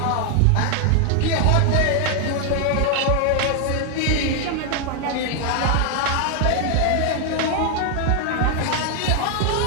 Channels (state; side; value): different; both; correlation 0.00